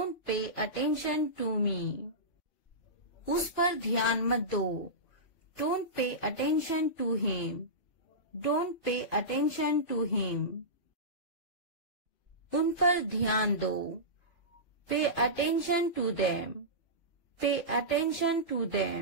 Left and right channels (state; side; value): late; right; 2.5 ms